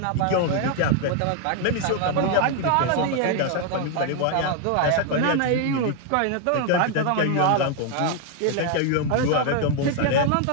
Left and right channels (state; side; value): different; both; correlation 0.00